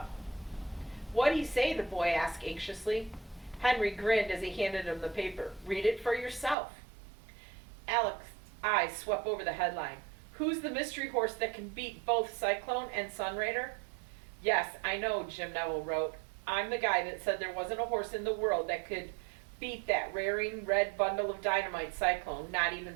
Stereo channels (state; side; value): drops out; left; at 6.6 s